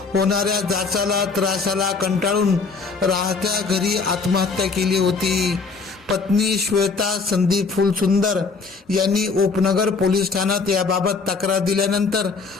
होणाऱ्या जाचाला त्रासाला कंटाळून राहत्या घरी आत्महत्या केली होती। पत्नी श्वेता संदीप फुलसुंदर यांनी उपनगर पोलीस ठाण्यात याबाबत तक्रार दिल्यानंतर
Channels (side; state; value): right; quieter; 4.6 dB